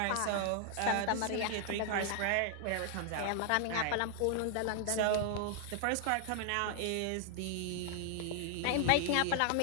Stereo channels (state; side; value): different; both; correlation 0.00